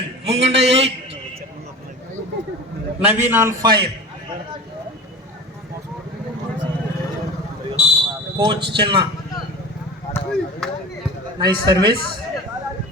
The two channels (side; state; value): both; normal; correlation 0.33